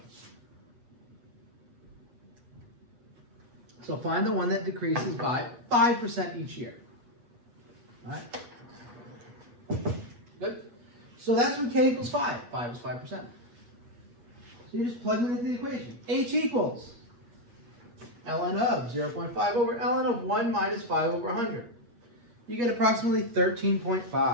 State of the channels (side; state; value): left; late; 8.3 ms